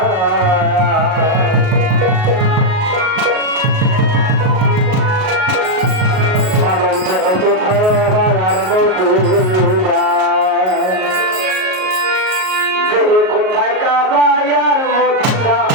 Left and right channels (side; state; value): left; late; 38 ms